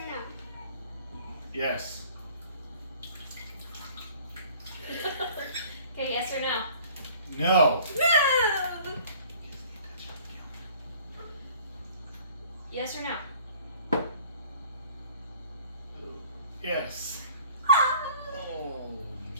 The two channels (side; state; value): both; inverted; correlation -0.52